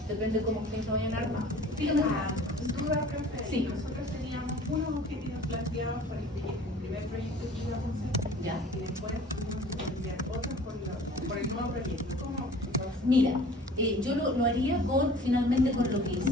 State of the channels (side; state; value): both; normal; correlation 0.47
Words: depende de cómo ustedes lo vayan a armar. Dígame. Duda, profe. Sí. Nosotros teníamos unos objetivos planteados por el primer proyecto que íbamos a hacer. Ya. Y después tuvimos que plantear otros por el nuevo proyecto. ¿Cómo? Mira, yo lo haría finalmente con lo que